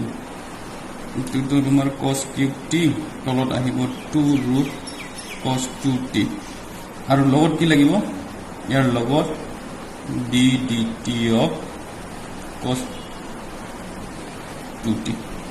ইটো তো তোমাৰ cos cube t তলত আহিব 2 root cos 2t আৰু লগত কি লাগিব ইয়াৰ লগত d dt of cos 2t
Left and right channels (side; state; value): both; identical; correlation 1.00